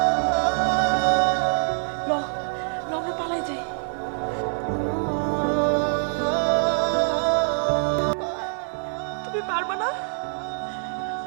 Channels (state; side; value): silent; left; 57 dB below the other